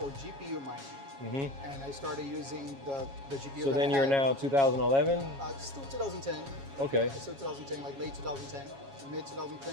GPU mining. Mm-hmm. And I started using the GPU. So then you're now 2011? Still 2010. Okay. Still 2010, like late 2010, mid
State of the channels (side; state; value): left; late; 7.3 ms